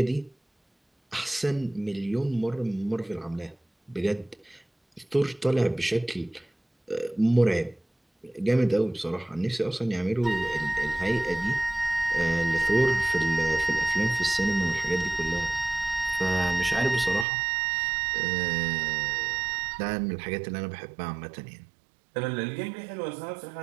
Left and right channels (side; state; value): left; drops out; at 17.2 s